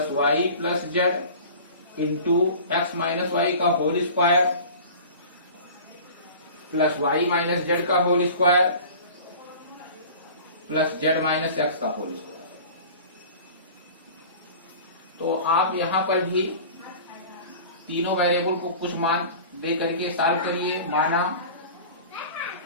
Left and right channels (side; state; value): both; inverted; correlation -0.40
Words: y plus z into x minus y का whole square plus y minus z का whole square plus z minus x का whole square. तो आप यहां पर भी तीनों वेरिएबल को कुछ मान दे करके सॉल्व करिए। माना